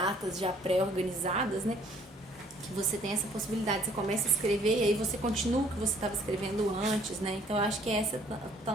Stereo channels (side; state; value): both; normal; correlation 0.60